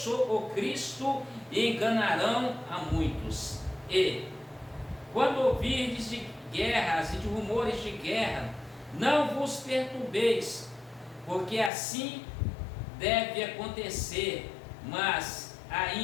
o Cristo, e enganarão a muitos. E, quando ouvirdes de guerras e de rumores de guerra, não vos perturbeis, porque assim deve acontecer, mas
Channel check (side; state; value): right; drops out; at 11.7 s